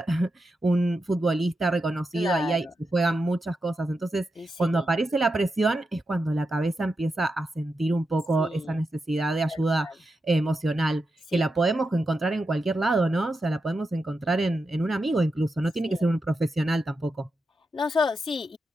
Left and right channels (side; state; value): both; normal; correlation 0.87